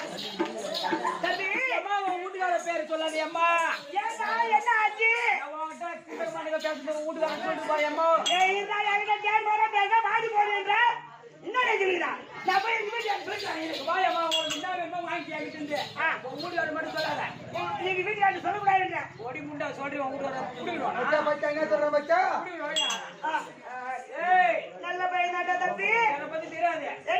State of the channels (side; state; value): both; identical; correlation 1.00